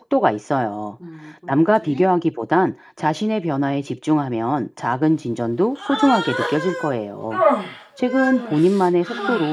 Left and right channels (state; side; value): identical; both; correlation 1.00